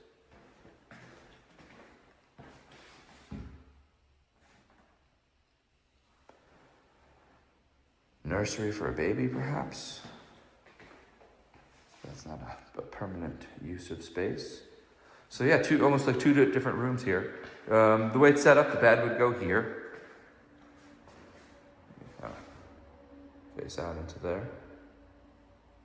Nursery for a baby, perhaps? That's not a permanent use of space. So yeah, almost like two different rooms here. The way it's set up, the bed would go here. Face out into there.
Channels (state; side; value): identical; both; correlation 1.00